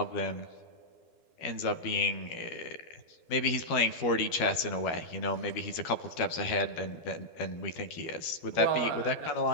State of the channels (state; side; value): late; right; 12 ms